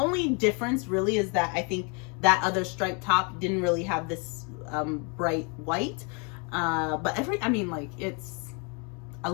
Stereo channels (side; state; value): right; quieter; 34.4 dB